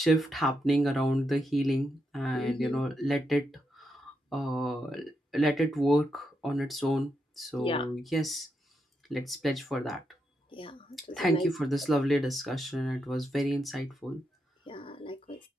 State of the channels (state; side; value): normal; both; correlation 0.83